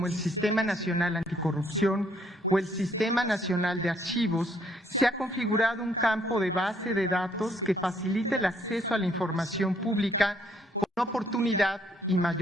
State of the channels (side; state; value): both; normal; correlation 0.68